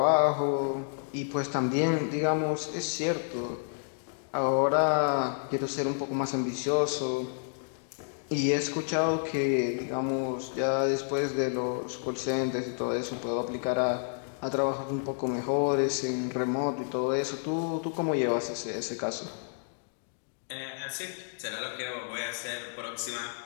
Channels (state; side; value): silent; right; digital silence